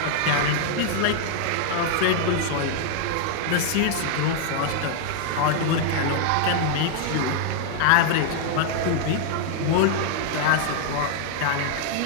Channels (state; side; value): different; both; correlation 0.00